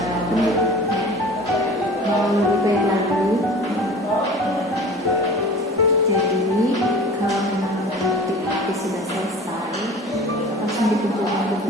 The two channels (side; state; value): both; normal; correlation 0.41